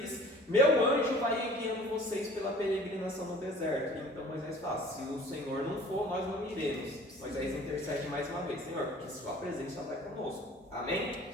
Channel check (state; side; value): normal; both; correlation 0.48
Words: meu anjo vai guiando vocês pela peregrinação no deserto. Então Moisés fala, se o Senhor não for, nós não iremos. Moisés intercede mais uma vez, Senhor, porque sua presença vai conosco. Amém?